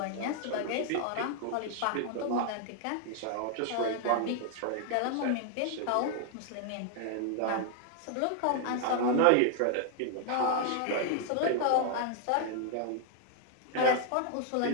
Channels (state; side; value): different; both; correlation 0.00